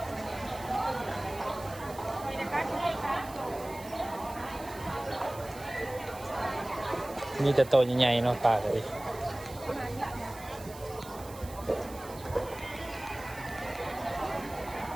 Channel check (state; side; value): noise; right; hiss, 17 dB below the sound